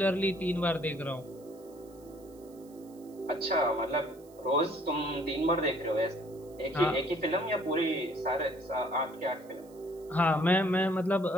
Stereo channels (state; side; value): noise; right; hiss, 27 dB below the sound